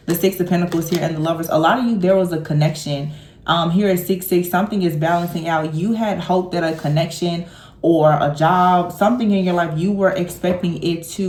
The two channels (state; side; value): identical; both; correlation 1.00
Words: The Six of Pentacles here and the Lovers. A lot of you, there was a connection. Here at 6-6, something is balancing out. You had hope that a connection or a job, something in your life, you were expecting it